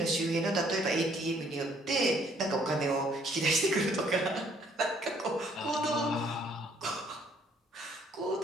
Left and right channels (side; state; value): both; normal; correlation 0.64